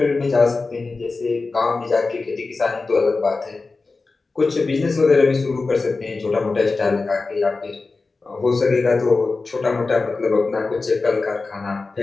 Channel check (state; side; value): quieter; right; 3.8 dB